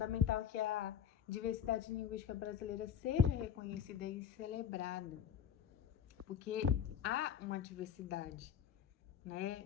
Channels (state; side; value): quieter; right; 8.7 dB